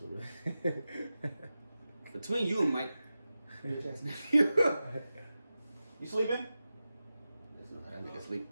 it. Between you and Mike. You sleeping? There's nothing I make it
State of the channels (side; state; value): both; inverted; correlation -0.93